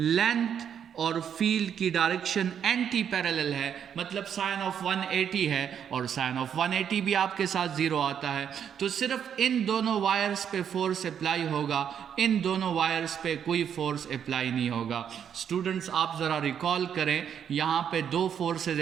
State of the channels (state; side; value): quieter; left; 8.4 dB